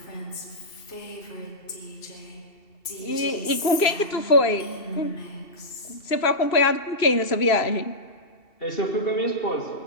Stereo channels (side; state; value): right; late; 2.7 ms